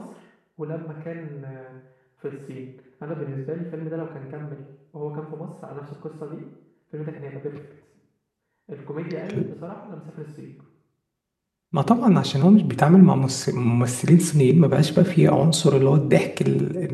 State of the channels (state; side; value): identical; both; correlation 1.00